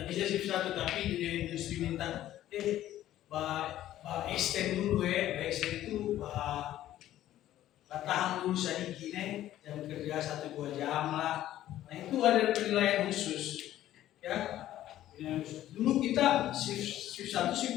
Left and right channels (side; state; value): right; quieter; 13.2 dB